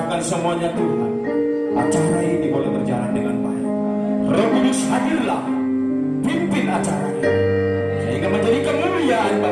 semuanya Tuhan. Acara ini boleh berjalan dengan baik. Roh Kudus hadirlah, pimpin acaranya sehingga menjadi kemuliaan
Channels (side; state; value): both; identical; correlation 1.00